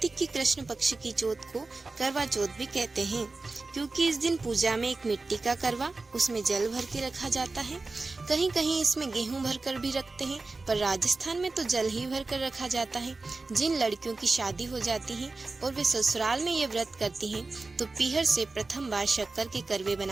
की कृष्ण पक्ष की चौथ को करवा चौथ भी कहते हैं, क्योंकि इस दिन पूजा में एक मिट्टी का करवा, उसमें जल भर के रखा जाता है। कहीं कहीं इसमें गेहूं भरकर भी रखते हैं, पर राजस्थान में तो जल ही भर कर रखा जाता है। जिन लड़कियों की शादी हो जाती है और वे ससुराल में ये व्रत करती हैं, तो पीहर से प्रथम बार शक्कर के करवे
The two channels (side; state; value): left; quieter; 3.6 dB